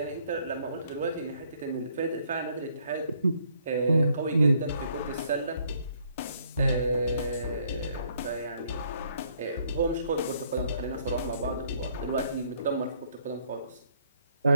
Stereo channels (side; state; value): both; inverted; correlation -0.67